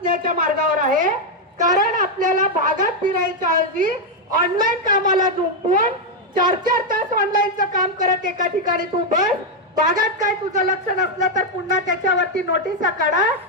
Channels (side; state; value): both; normal; correlation 0.01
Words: मार्गावर आहे, कारण आपल्याला भागात फिरायच्या ऐवजी ऑनलाईन कामाला झुंपून 4-4 तास ऑनलाईनचं काम करत एका ठिकाणी तू बस, भागात काय तुझं लक्ष नसलं तर पुन्हा त्याच्यावरती नोटिसा काढा